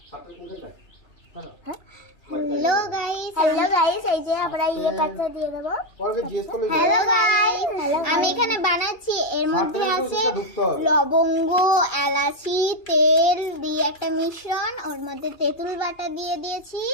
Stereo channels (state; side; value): late; right; 2.9 ms